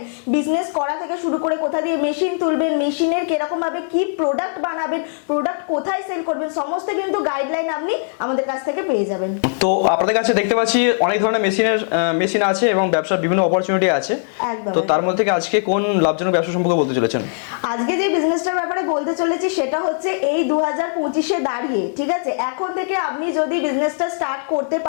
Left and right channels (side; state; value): right; silent; digital silence